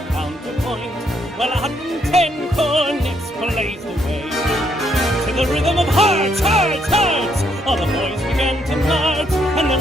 counterpoint, while 110 cornets blazed away. To the rhythm of hearts, hearts, hearts, all the boys began to march, and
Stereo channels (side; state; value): both; normal; correlation 0.73